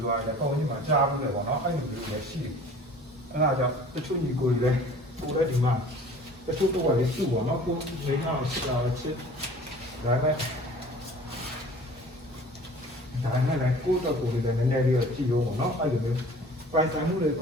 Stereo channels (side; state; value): both; normal; correlation 0.47